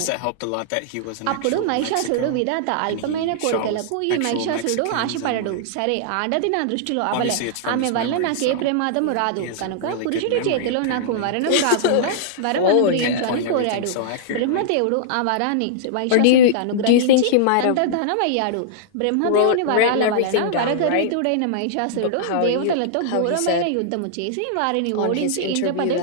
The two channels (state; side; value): different; both; correlation -0.02